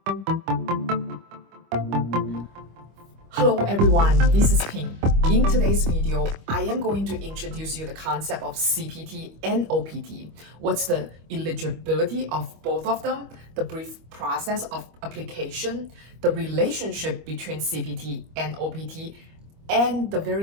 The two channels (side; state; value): left; late; 25 ms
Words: Hello everyone, this is Ping. In today's video, I am going to introduce you the concept of CPT and OPT. What's the eligibility of both of them, the brief process of application, the relationship between CPT and OPT, and the